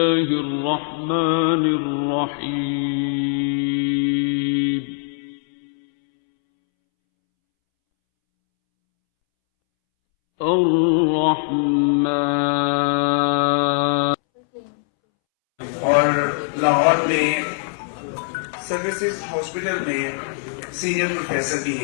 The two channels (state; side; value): silent; right; 65 dB below the other